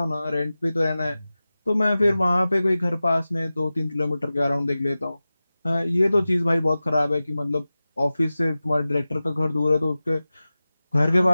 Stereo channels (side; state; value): both; inverted; correlation -0.96